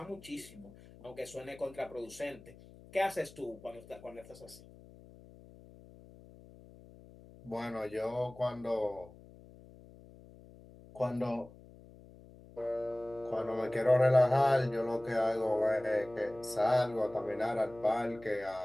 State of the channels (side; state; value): left; noise; hum, 21 dB below the sound